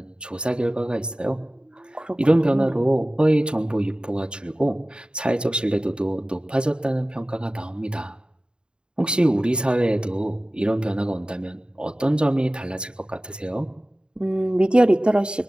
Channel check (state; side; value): late; left; 0.050 ms